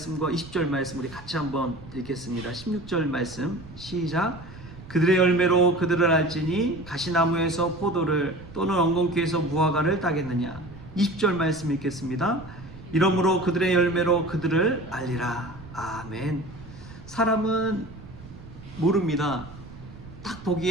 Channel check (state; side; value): noise; right; rumble, 17 dB below the sound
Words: 20절 말씀 우리 같이 한번 읽겠습니다. 16절 말씀 시작. 그들의 열매로 그들을 알지니 가시나무에서 포도를 또는 엉겅퀴에서 무화과를 따겠느냐. 20절 말씀 읽겠습니다. 이러므로 그들의 열매로 그들을 알리라. 아멘. 사람은 모릅니다. 딱